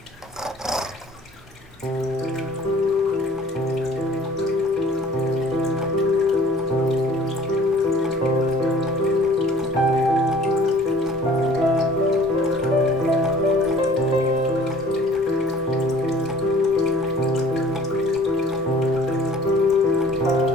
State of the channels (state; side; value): normal; both; correlation 0.51